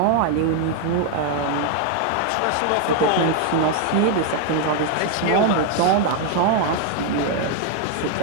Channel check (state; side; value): different; both; correlation 0.00